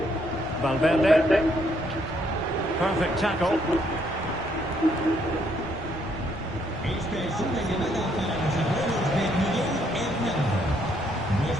Valverde. Perfect tackle. Esta es una llamada para los abuelos de Miguel Hernández.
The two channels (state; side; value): noise; left; rumble, 19 dB below the sound